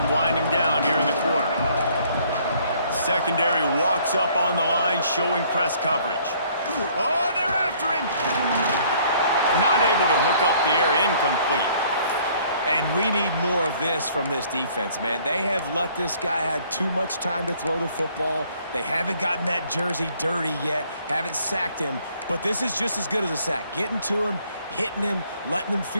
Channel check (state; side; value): inverted; both; correlation -0.60